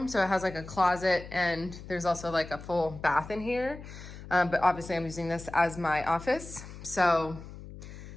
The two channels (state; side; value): noise; left; hum, 14 dB below the sound